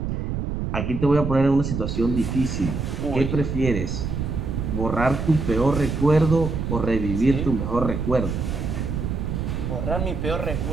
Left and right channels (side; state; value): right; noise; rumble, 3 dB below the sound